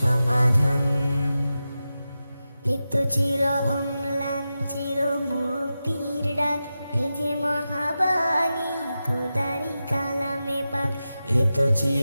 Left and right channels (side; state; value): both; inverted; correlation -0.92